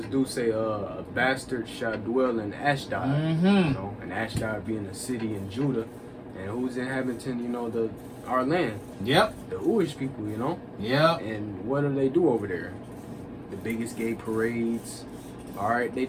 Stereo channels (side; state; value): both; identical; correlation 1.00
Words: do say a bastard shall dwell in Ashdod, you know, and Ashdod being a city in Judah, and who's inhabiting, you know, our land. Yep. The Jewish people, you know. Yep. And what do they do over there? The biggest gay parades. All right, they